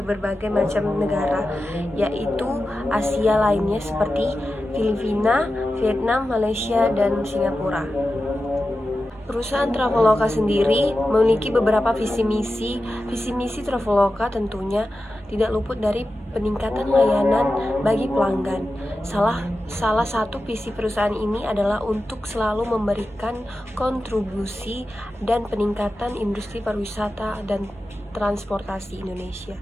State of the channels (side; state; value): both; normal; correlation 0.92